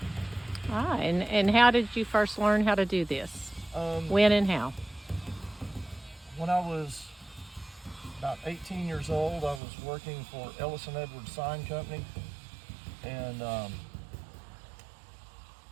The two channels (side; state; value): left; drops out; at 9.6 s